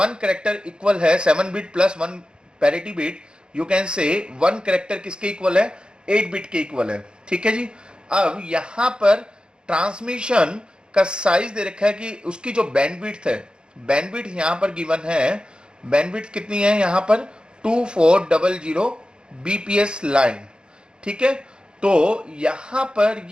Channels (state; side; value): late; left; 0.050 ms